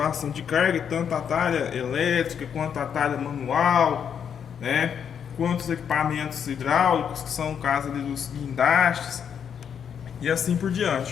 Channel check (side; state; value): right; quieter; 7.8 dB